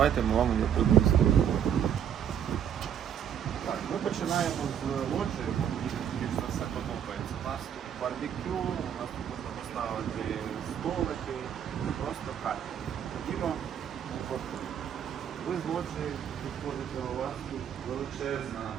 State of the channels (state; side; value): quieter; left; 9.0 dB